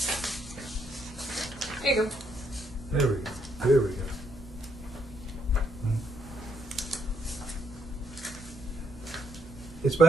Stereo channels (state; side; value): normal; both; correlation 0.74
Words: Here you go. There we go. There we go. It's